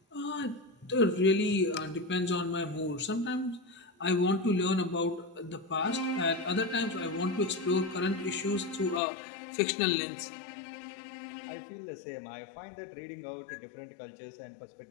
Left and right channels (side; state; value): right; drops out; at 9.0 s